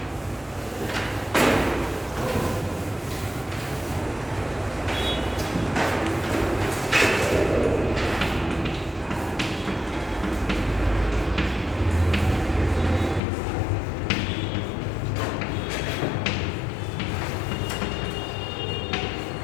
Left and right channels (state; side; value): drops out; right; at 13.2 s